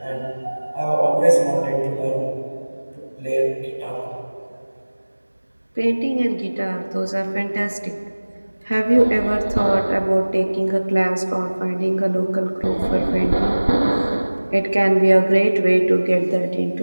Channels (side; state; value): both; inverted; correlation -1.00